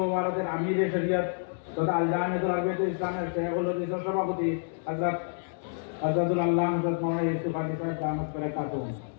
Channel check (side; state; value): right; silent; digital silence